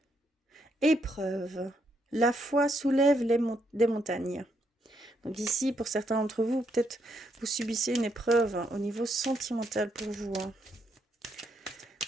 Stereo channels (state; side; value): normal; both; correlation 0.76